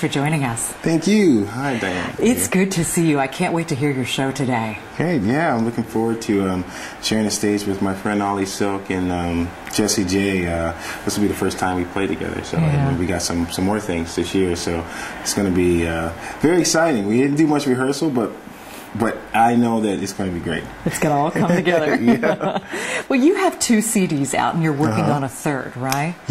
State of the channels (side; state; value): both; identical; correlation 1.00